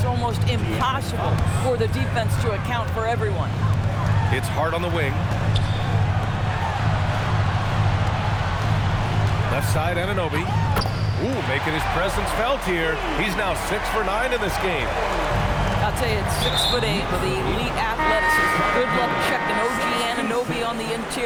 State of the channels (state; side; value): identical; both; correlation 1.00